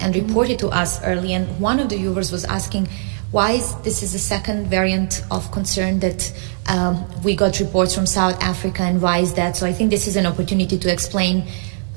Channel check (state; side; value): silent; left; 61 dB below the other